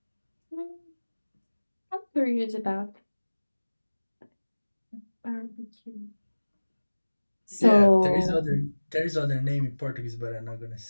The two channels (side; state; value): both; inverted; correlation -1.00